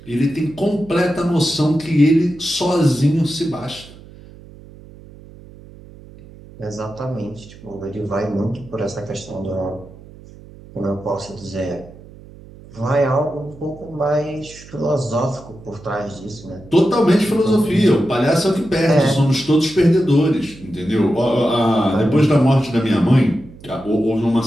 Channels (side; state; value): right; noise; hum, 20 dB below the sound